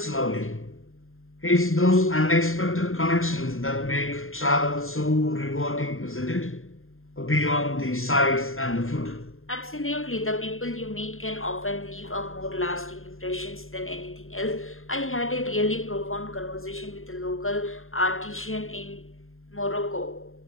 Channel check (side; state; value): right; late; 0.61 ms